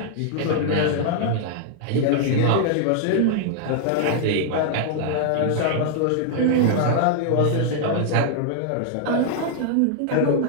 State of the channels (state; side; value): different; both; correlation -0.01